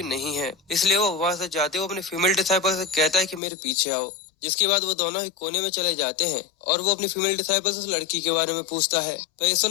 नहीं है। इसलिए वो वहाँ से जाते हुए अपने फीमेल डिसाइपल से कहता है कि मेरे पीछे आओ। जिसके बाद वो दोनों ही कोने में चले जाते हैं और वो अपनी फीमेल डिसाइपल से उस लड़की के बारे में पूछता है। पर ये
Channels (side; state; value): right; drops out; at 3.4 s